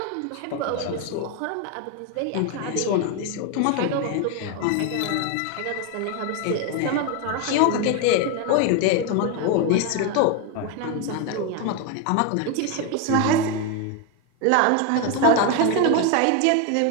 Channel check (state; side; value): different; both; correlation 0.01